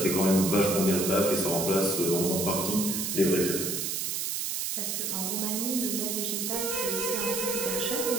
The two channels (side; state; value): right; noise; hiss, 1 dB below the sound